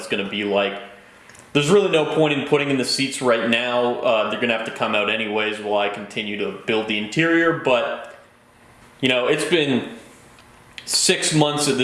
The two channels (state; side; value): identical; both; correlation 1.00